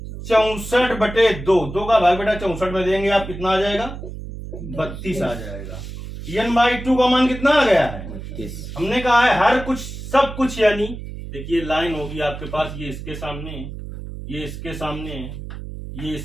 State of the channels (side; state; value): right; noise; hum, 10 dB below the sound